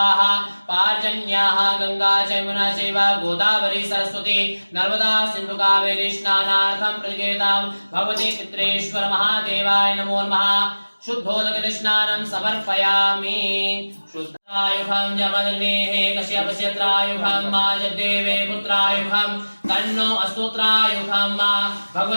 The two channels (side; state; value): both; inverted; correlation -1.00